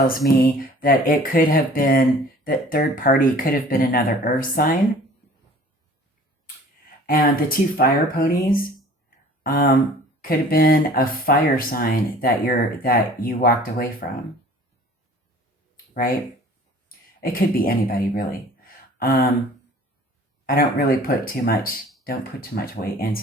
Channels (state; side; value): normal; both; correlation 0.48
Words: me that it could have been, that third party could have been another earth sign. And the 2 fire ponies could have been a fire sign that you walked away from. Right? It could be anybody, really. I don't really put too much weight